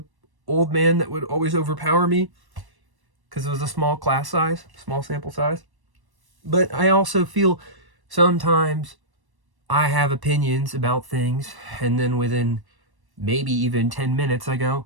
old man that would always overpower me because it was a small class size, small sample size. But I also feel sometimes I have opinions about things, and then within maybe even 10 minutes I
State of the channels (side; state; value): left; late; 1.1 ms